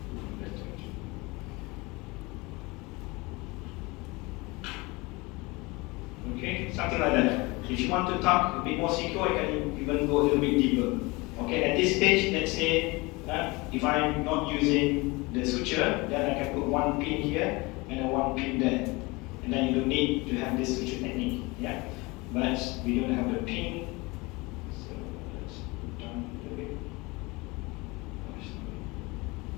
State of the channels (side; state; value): right; quieter; 24.4 dB